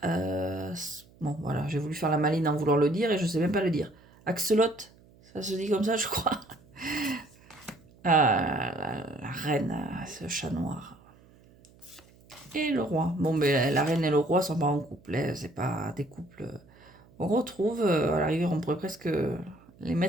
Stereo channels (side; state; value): right; noise; hum, 27 dB below the sound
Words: Bon, voilà, j'ai voulu faire la maline en voulant le dire et je ne sais même pas le dire. Axelotte, ça se dit comme ça, je crois. La reine, ce chat noir. Et le roi. Bon, mais la reine et le roi sont pas en couple, hein, c'est pas des couples. On retrouve, à la rigueur, on pourrait presque les